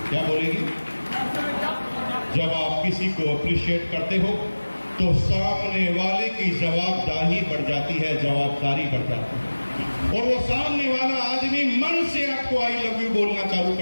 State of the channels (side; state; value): both; inverted; correlation -1.00